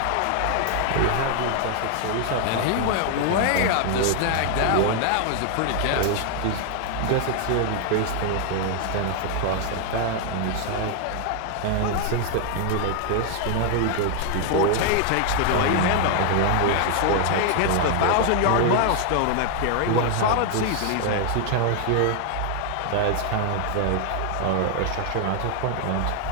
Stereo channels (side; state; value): both; different; correlation 0.00